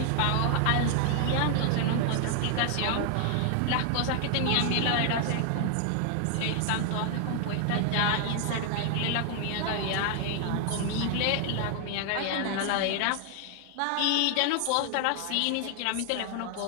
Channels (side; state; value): both; different; correlation 0.00